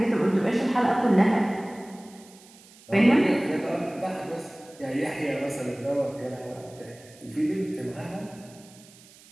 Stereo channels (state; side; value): noise; right; hiss, 24 dB below the sound